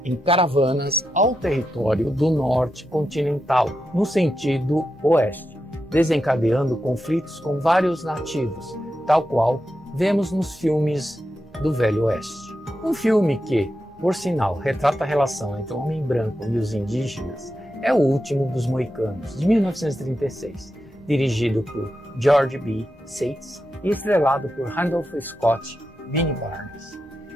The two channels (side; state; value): both; normal; correlation 0.88